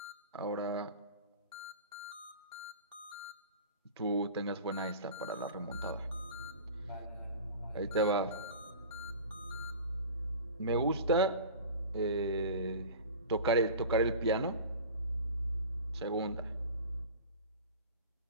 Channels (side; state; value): both; inverted; correlation -0.37